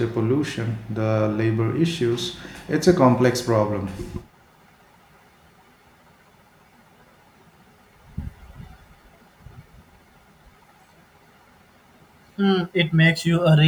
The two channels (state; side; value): identical; both; correlation 1.00